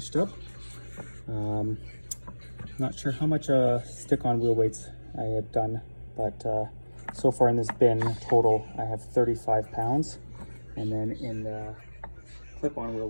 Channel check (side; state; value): both; inverted; correlation -1.00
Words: up. Not sure how much stick-on wheel weights I had done, but so far in this bin total, I have 35 pounds. And then in the clip-on wheel